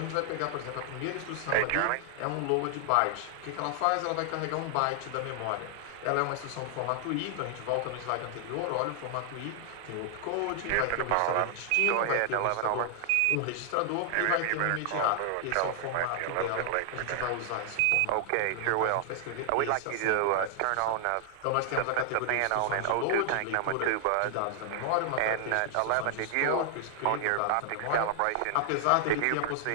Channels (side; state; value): both; different; correlation 0.00